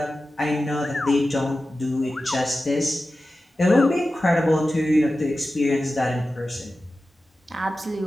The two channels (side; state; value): both; normal; correlation 0.94